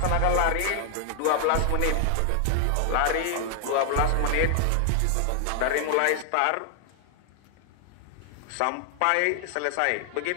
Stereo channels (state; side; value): different; both; correlation 0.00